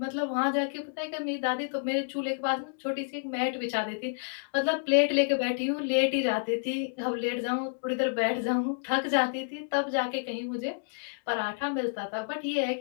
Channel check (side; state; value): right; silent; digital silence